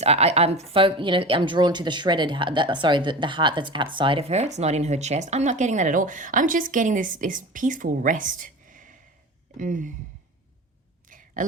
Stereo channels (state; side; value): normal; both; correlation 0.32